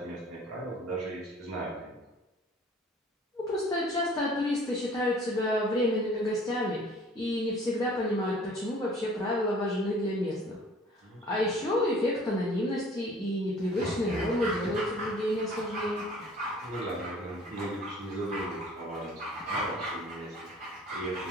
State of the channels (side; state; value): both; normal; correlation 0.51